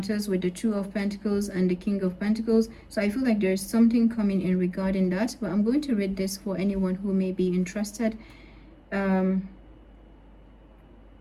with the Two of Pentacles and the King of Pentacles. So I feel like there's something coming in regarding that, but I'm going to read this for anyone who may be interested.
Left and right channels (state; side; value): identical; both; correlation 1.00